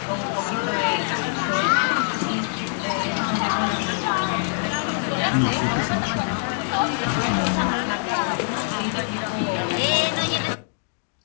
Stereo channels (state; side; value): silent; right; 62 dB below the other